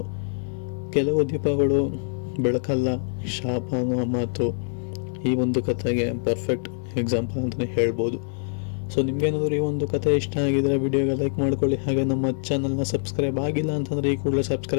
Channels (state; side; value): silent; right; 57 dB below the other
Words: ಕೆಲವು ದೀಪಗಳು ಬೆಳಕಲ್ಲ, ಶಾಪ ಅನ್ನೋ ಮಾತು ಈ ಒಂದು ಕಥೆಗೆ ಪರ್ಫೆಕ್ಟ್ ಎಕ್ಸಾಂಪಲ್ ಅಂತಲೇ ಹೇಳ್ಬೋದು. ಸೊ ನಿಮ್ಗೇನಾದರೂ ಈ ಒಂದು ಕಥೆ ಇಷ್ಟ ಆಗಿದ್ರೆ ವಿಡಿಯೋಗೆ ಲೈಕ್ ಮಾಡ್ಕೊಳ್ಳಿ. ಹಾಗೆ ನಮ್ಮ ಚಾನಲ್ನ ಸಬ್ಸ್ಕ್ರೈಬ್ ಆಗಿಲ್ಲ ಅಂತಂದರೆ ಈ ಕೂಡಲೇ